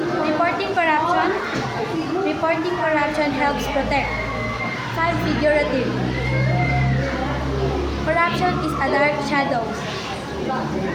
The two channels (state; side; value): identical; both; correlation 1.00